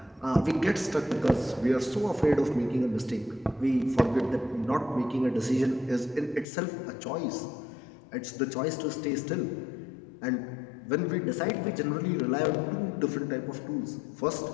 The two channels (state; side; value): drops out; right; at 6.5 s